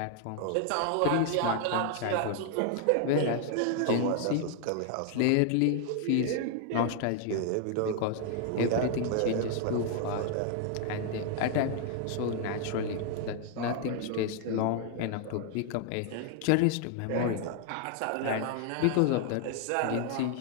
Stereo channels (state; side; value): different; both; correlation 0.00